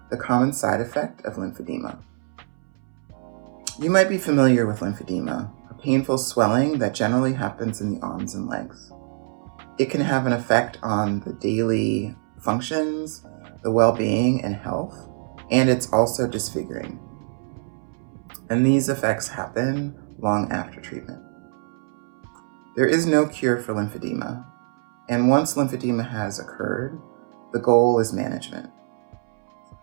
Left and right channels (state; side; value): silent; left; 62 dB below the other